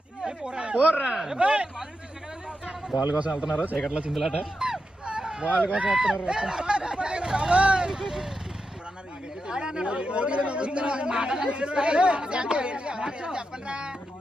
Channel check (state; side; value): normal; both; correlation 0.87